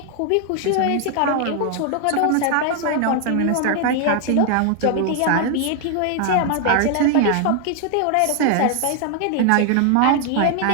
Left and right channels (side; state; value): both; different; correlation 0.00